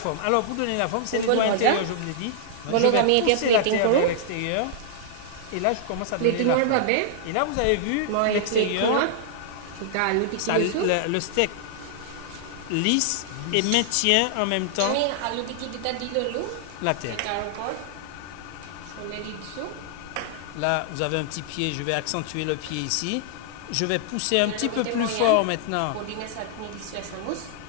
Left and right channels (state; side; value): different; both; correlation -0.01